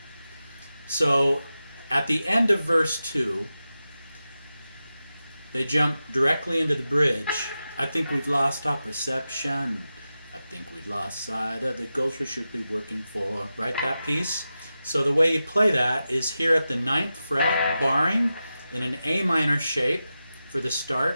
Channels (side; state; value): both; inverted; correlation -0.92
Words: So at the end of verse 2, they jump directly into the bridge. I think we've lost our perception. I think we've lost sight of the goals we should be working for. Right, that piece? So the way you play that is here at the 9th fret, barring in an A minor shape for the